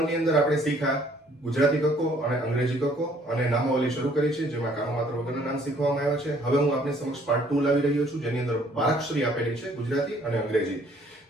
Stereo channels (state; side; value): normal; both; correlation 0.61